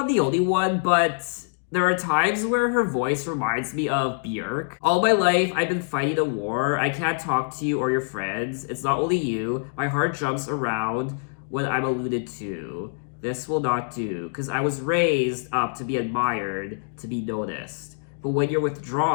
the only one, but there are times where her voice reminds me of Björk. All my life, I've been fighting a war. I can't talk to you or your friends. It's not only you. My heart jumps around when I'm alluded to. This will not do, because I was raised up to be admired, to be noticed. But when you're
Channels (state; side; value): silent; right; digital silence